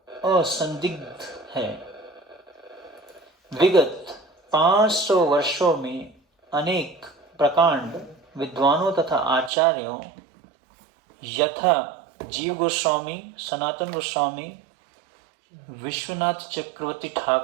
असंदिग्ध है। विगत 500 वर्षों में अनेक प्रकांड विद्वानों तथा आचार्यों यथा जीव गोस्वामी, सनातन गोस्वामी, विश्वनाथ चक्रवर्ती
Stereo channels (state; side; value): drops out; left; at 9.5 s